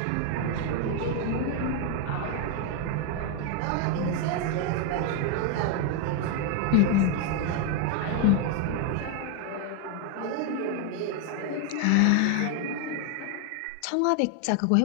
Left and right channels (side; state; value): both; different; correlation 0.01